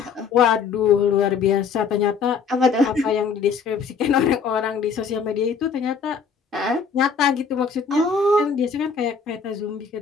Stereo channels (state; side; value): quieter; right; 5.8 dB